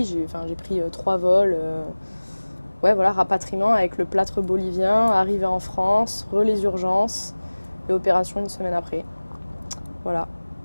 pris 3 vols. Ouais, voilà, rapatriement avec le plâtre bolivien, arrivée en France, les urgences et opération une semaine après. Voilà.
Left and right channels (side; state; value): both; inverted; correlation -1.00